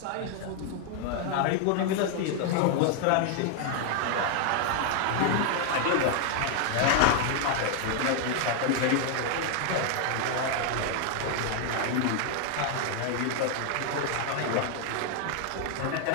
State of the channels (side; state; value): both; different; correlation 0.00